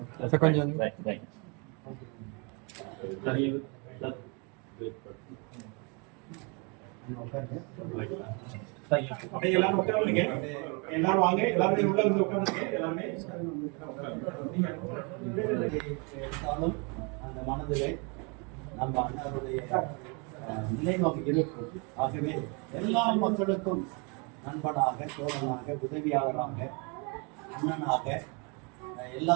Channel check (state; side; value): quieter; left; 33.0 dB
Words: கொஞ்சம் எல்லாரும் உட்காருங்க, எல்லாரும் வாங்க, எல்லாருமே உள்ள வந்து உட்காருங்க. எல்லாருமே அந்த மனதிலே நம்ம அண்ணனுடைய நிலைவாக இருக்கும். ஆகவே எல்லா மக்களுக்கும் நண்பனாக, தோழனாக, உதவியாளராக, அண்ணனாக எல்லா